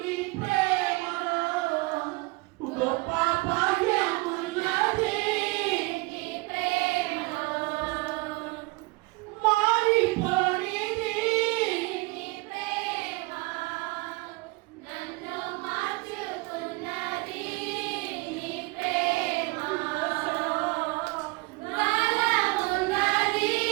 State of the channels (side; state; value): left; quieter; 24.6 dB